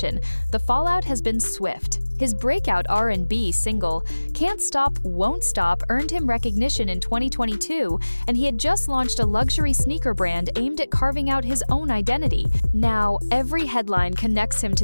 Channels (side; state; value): both; inverted; correlation -1.00